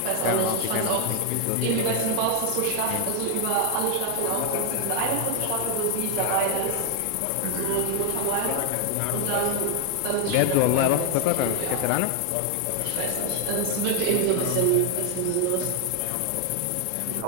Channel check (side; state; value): both; different; correlation 0.00